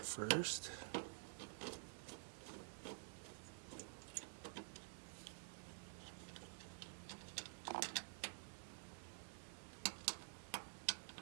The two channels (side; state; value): left; silent; digital silence